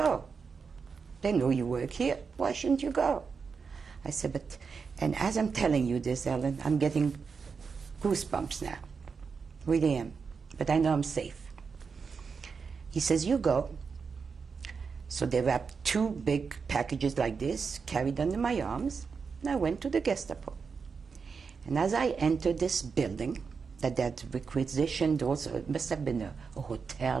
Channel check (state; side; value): quieter; left; 5.4 dB